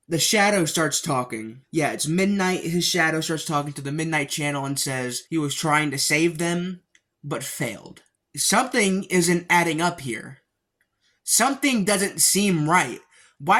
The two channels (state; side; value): identical; both; correlation 1.00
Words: The shadow starts talking. Yeah, it's midnight. His shadow starts talking to the Midnight Channel and says he was trying to save them, but failed. Something isn't adding up here. Something doesn't seem right.